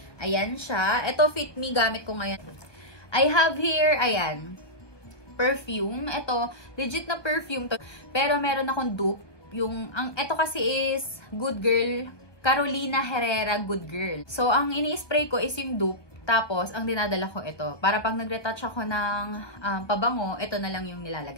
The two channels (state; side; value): late; right; 1.2 ms